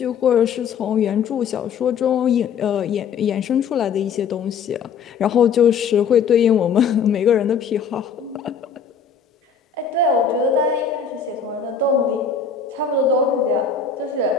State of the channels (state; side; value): quieter; right; 6.5 dB